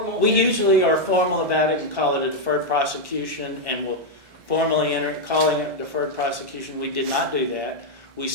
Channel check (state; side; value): late; left; 1.7 ms